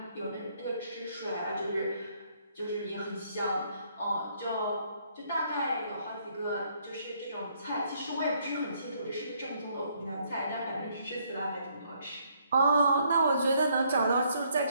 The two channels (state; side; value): inverted; both; correlation -0.69